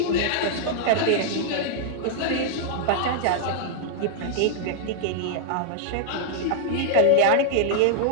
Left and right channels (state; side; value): different; both; correlation -0.01